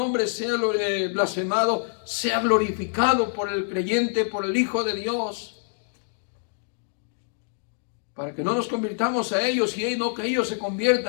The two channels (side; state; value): right; silent; digital silence